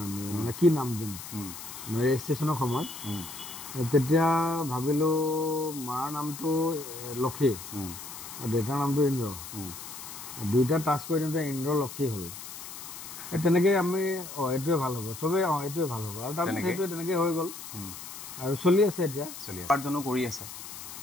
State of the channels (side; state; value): left; noise; hiss, 11 dB below the sound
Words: আমি, কি নাম দিম ৰেজিষ্ট্ৰেশ্যনৰ সময়ত। তেতিয়া ভাবিলোঁ মাৰ নামটো লক্ষী আৰু দেউতাৰ নামটো ইন্দ্ৰ, দুইটা টাচ কৰি দিওঁতে ইন্দ্ৰ লক্ষী হ'ল। তেনেকৈ আমি এইটোৱে ভাল হ'ব, চবেই এইটোৱে ভাল হ'ব, আৰু তাৰপিছত সেইটোৱে তেনেকৈ হৈ গ'ল আৰু চলি আছে। এতিয়া উপাৰ্জনো কৰি আছে,